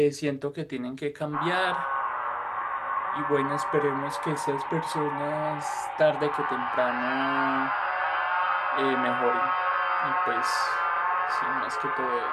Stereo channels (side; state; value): both; identical; correlation 1.00